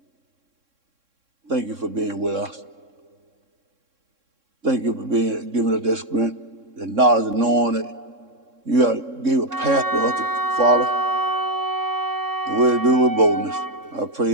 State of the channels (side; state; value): left; late; 3.6 ms